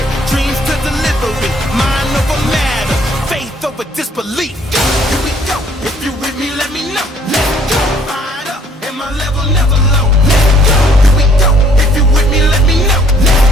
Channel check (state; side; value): normal; both; correlation 0.61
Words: dreams to delivery. Mind over matter, faith over disbelief. Here we go, if you with me let me know. Let's go, fired up and my level never low. Let's go, here we go, if you with me let me know.